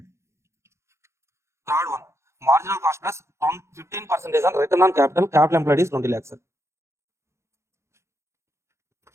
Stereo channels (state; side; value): late; left; 0.13 ms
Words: Third one. Marginal cost plus 15% on return on capital. Capital employed is 20 lakhs, sir.